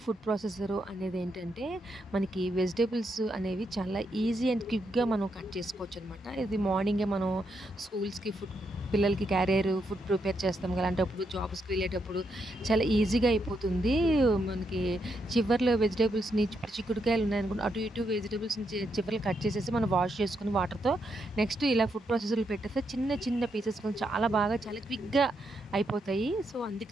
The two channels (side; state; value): both; normal; correlation 0.80